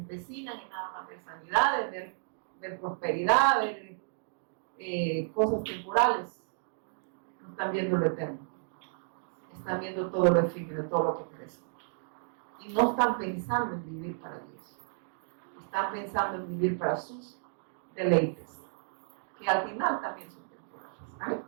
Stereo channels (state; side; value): silent; left; digital silence